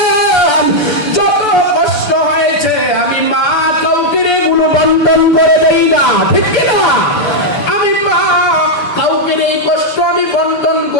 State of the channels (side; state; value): right; late; 6.9 ms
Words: যত কষ্ট হয়েছে আমি মা কাউকে এগুলো বন্ধন করে দেই না, ঠিক কিনা? আমি মা কাউকে এই কষ্ট আমি বন্ধন